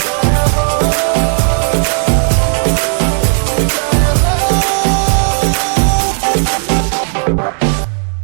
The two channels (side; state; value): left; silent; digital silence